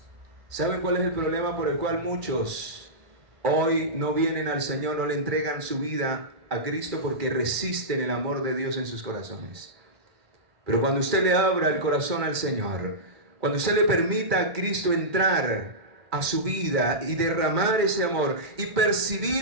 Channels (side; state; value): left; late; 2.1 ms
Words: ¿Saben cuál es el problema por el cual muchos hoy no vienen al Señor, no le entregan su vida a Cristo? Porque resisten el amor de Dios en sus corazones. Pero cuando usted le abra el corazón al Señor, cuando usted le permita a Cristo entrar a su vida y derramar ese amor y